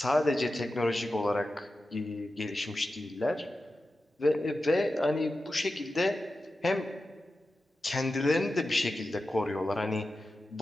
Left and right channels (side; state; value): both; normal; correlation 0.92